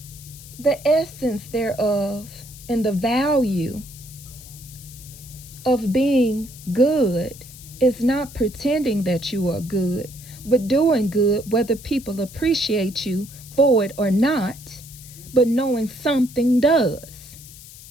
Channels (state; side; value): noise; left; hiss, 18 dB below the sound